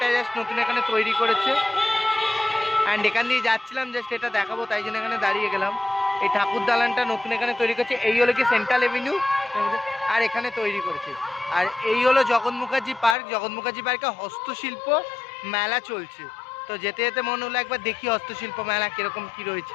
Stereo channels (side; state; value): right; drops out; at 13.2 s